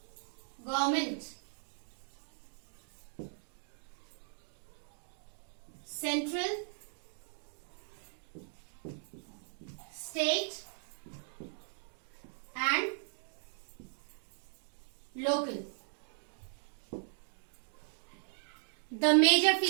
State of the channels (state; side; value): silent; left; digital silence